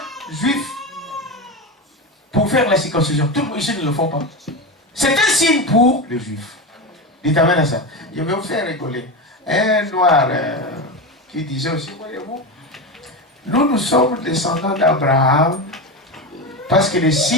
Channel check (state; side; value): normal; both; correlation 0.19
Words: juif pour faire la circoncision. Tout le monde ici ne le font pas. C'est un signe pour les juifs. Dites amen à ça. Je vais vous faire rigoler. Un noir qui disait aussi, voyez-vous, nous sommes descendants d'Abraham parce que le